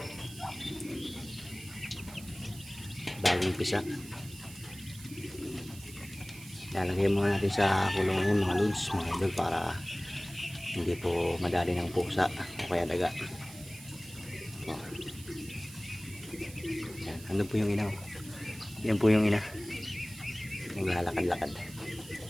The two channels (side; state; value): right; noise; hiss, 17 dB below the sound